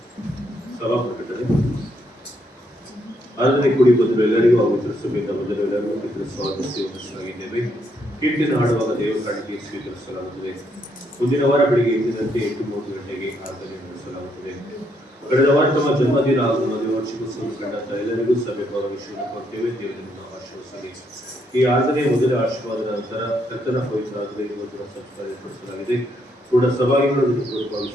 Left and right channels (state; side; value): normal; both; correlation 0.75